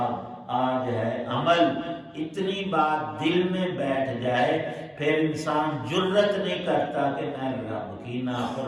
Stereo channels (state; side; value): identical; both; correlation 1.00